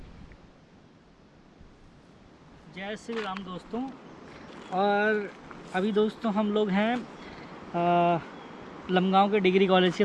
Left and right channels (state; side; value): identical; both; correlation 1.00